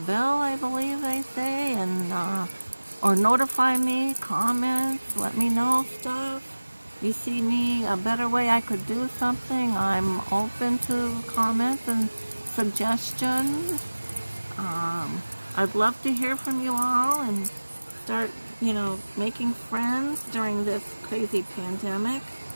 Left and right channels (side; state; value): both; inverted; correlation -1.00